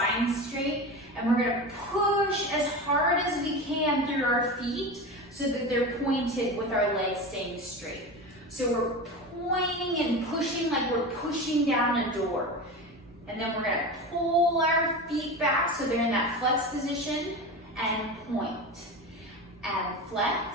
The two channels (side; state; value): both; normal; correlation 0.26